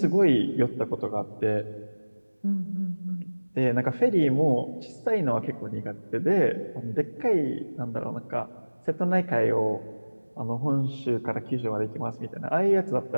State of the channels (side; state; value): both; inverted; correlation -1.00